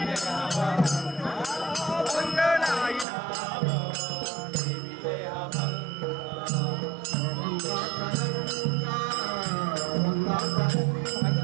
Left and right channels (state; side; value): drops out; left; at 3.1 s